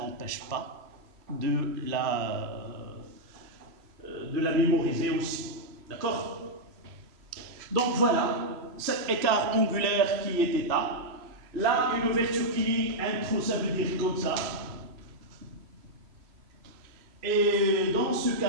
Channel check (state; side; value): late; left; 3.0 ms